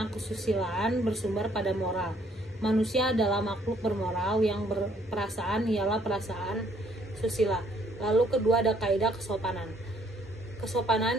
kesusilaan bersumber pada moral. Manusia adalah makhluk bermoral, yang berperasaan ialah perasaan susila. Lalu kedua ada kaidah kesopanan.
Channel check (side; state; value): both; normal; correlation 0.65